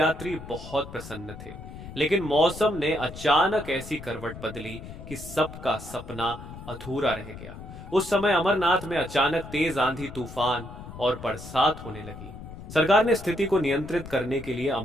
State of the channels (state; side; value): noise; left; rumble, 13 dB below the sound